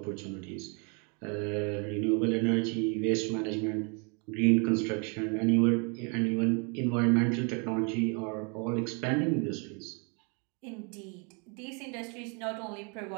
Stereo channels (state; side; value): quieter; left; 34.9 dB